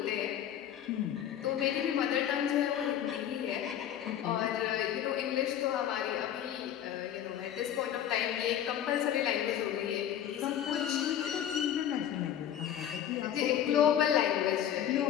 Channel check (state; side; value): quieter; right; 10.3 dB